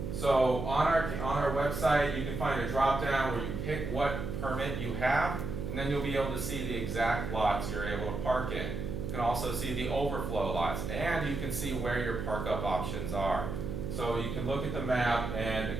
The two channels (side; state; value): right; noise; hum, 4 dB below the sound